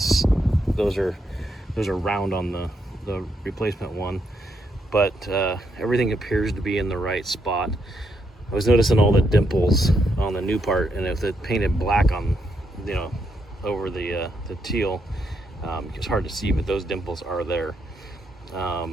those are round on the replacement one, but everything appears to be in the right spot. I was noticing all the dimples on the new part, and if it painted black on over the teal, it's hard to see, but those dimples are there.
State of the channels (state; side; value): normal; both; correlation 0.78